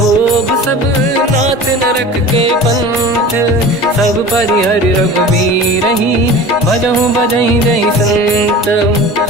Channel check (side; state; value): both; normal; correlation 0.37